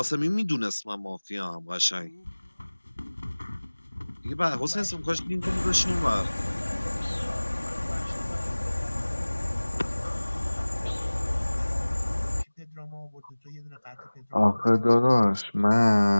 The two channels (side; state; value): both; inverted; correlation -1.00